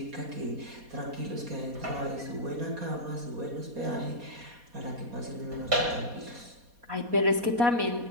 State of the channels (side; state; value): left; late; 4.2 ms